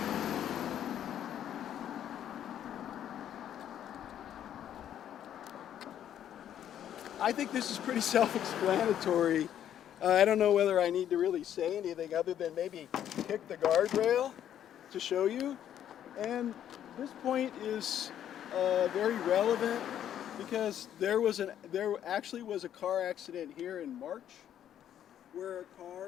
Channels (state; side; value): quieter; right; 10.4 dB